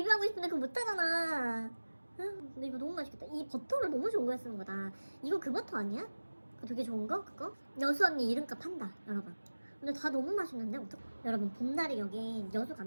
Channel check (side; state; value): both; inverted; correlation -1.00